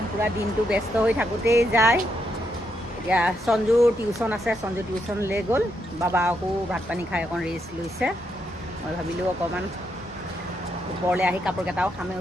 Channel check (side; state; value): both; normal; correlation 0.80